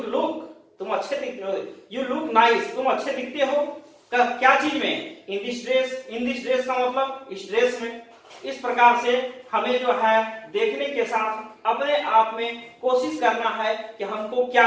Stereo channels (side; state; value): both; identical; correlation 1.00